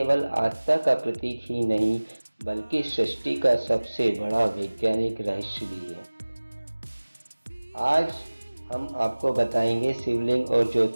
आस्था का प्रतीक ही नहीं बल्कि सृष्टि का सबसे बड़ा वैज्ञानिक रहस्य भी है। आज हम आपको बताएंगे शिवलिंग और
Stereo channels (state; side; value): inverted; both; correlation -1.00